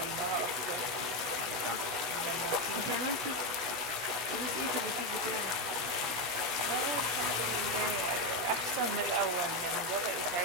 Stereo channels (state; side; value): late; left; 16 ms